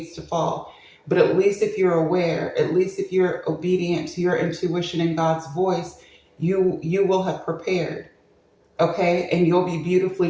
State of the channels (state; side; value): identical; both; correlation 1.00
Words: to fall. But at least if you're aware, at least if you're obedient to your intuition and God's voice, you will have prepared, okay? And you'll be beautifully